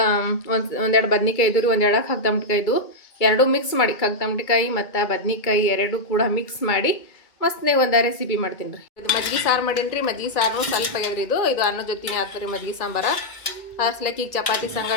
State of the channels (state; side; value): late; right; 2.3 ms